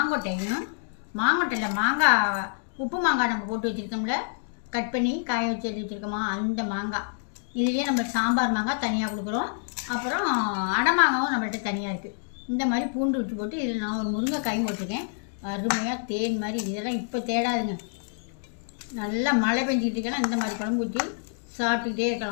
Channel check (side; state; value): right; silent; digital silence